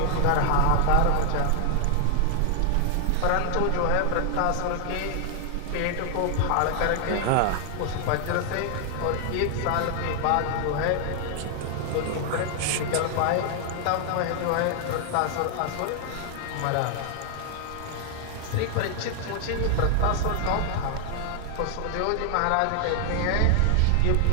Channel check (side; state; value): both; different; correlation 0.00